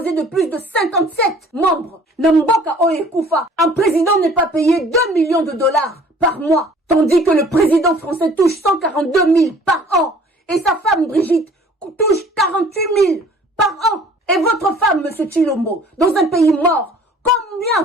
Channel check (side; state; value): both; normal; correlation 0.52